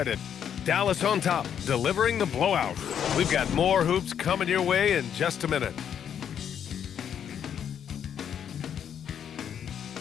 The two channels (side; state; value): right; quieter; 8.7 dB